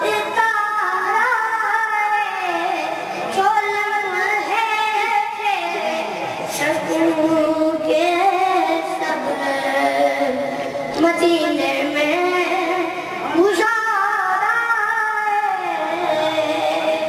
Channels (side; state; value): both; identical; correlation 1.00